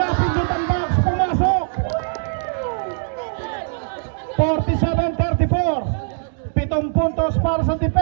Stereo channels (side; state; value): left; silent; digital silence